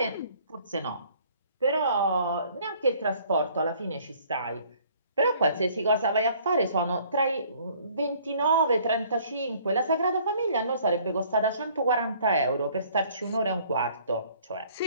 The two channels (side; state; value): both; inverted; correlation -0.58